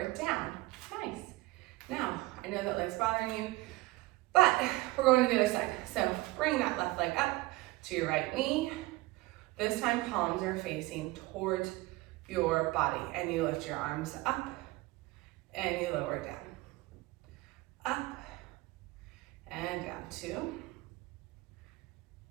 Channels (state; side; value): quieter; left; 20.7 dB